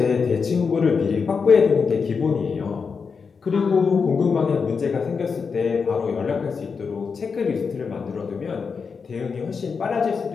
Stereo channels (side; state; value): right; quieter; 5.5 dB